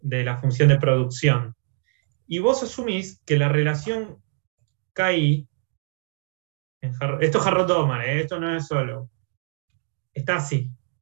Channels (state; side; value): silent; left; digital silence